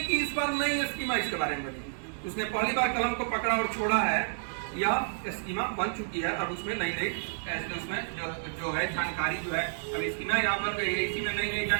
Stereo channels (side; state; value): left; silent; 56 dB below the other